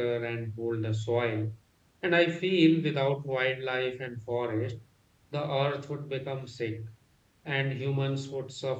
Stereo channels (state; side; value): identical; both; correlation 1.00